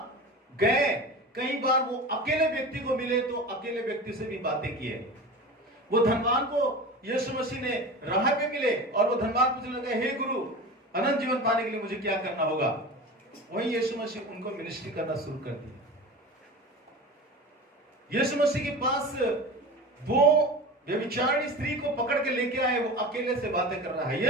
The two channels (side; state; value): both; normal; correlation 0.32